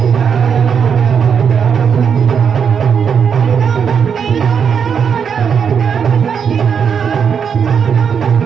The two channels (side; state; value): left; quieter; 7.0 dB